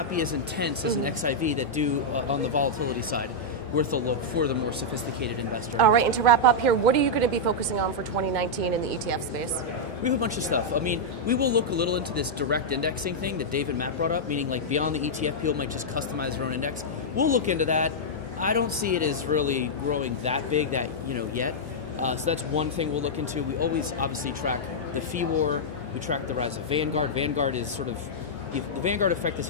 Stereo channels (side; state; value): both; normal; correlation -0.07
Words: be as intense as an XIV that do on the volatility side. Worth a look for the more sophisticated investor. All right, and to wrap up here, what are you going to be focusing on for 2019 in the ETF space? We have a bunch of stuff. I mean, we will look a little into this direct indexing thing that Dave and Matt brought up, meaning like beyond the ETF, people might just customize their own index. We'll look into that. I don't see it as really growing that big yet. So that's one thing we'll look into. We always obviously track the fee war. We track the rise of Vanguard. Vanguard is sort of, the Vanguard effect is